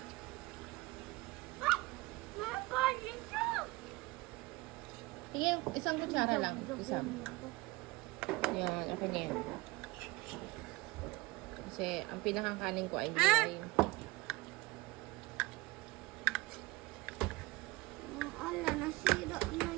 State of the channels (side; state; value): left; quieter; 22.2 dB